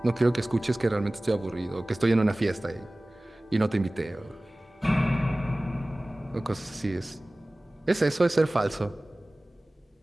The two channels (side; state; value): both; normal; correlation 0.98